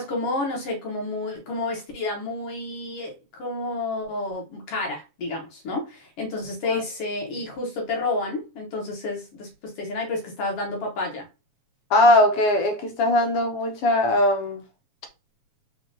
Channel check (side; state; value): right; late; 7.2 ms